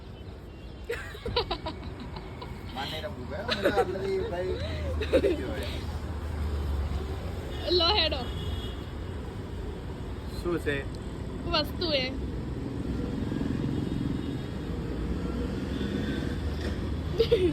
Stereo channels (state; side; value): identical; both; correlation 1.00